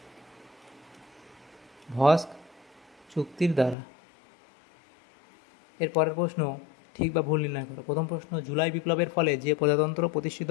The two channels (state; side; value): drops out; right; at 3.8 s